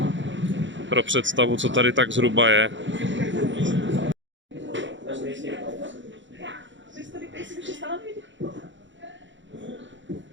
pro představu, co tady tak zhruba je.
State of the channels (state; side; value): late; left; 0.54 ms